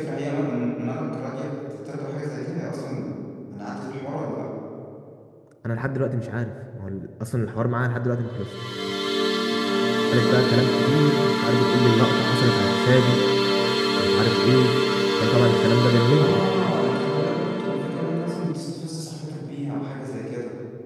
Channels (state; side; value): identical; both; correlation 1.00